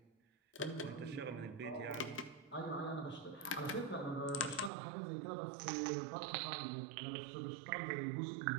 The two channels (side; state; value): left; drops out; at 4.7 s